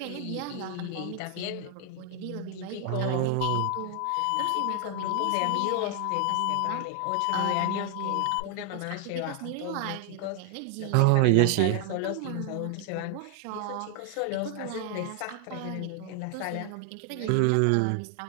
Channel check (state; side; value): different; both; correlation 0.00